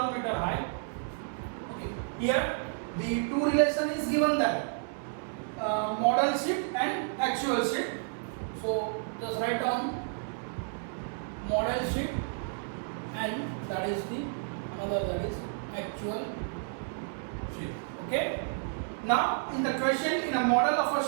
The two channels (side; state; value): left; silent; digital silence